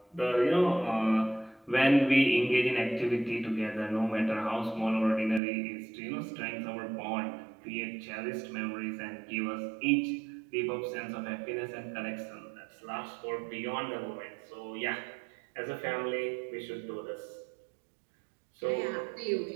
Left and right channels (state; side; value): drops out; left; at 5.4 s